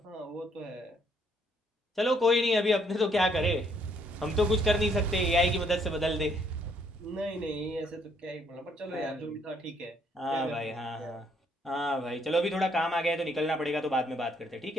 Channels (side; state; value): both; normal; correlation 0.68